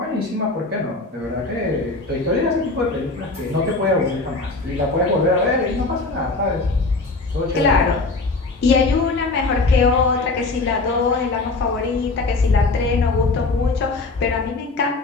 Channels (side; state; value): right; quieter; 3.5 dB